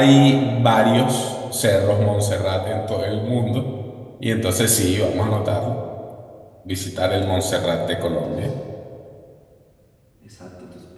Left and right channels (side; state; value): both; identical; correlation 1.00